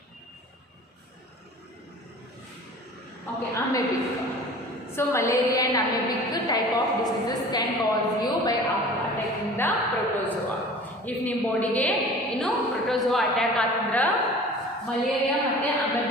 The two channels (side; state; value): both; normal; correlation 0.43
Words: okay, amoebic. So malaria and amoebic type of diseases can cause you by attacking the protozoa. If ನಿಮ್ಮ ಬಾಡಿಗೆ ಏನು protozoa attack ಆತಂದ್ರ malaria ಮತ್ತೆ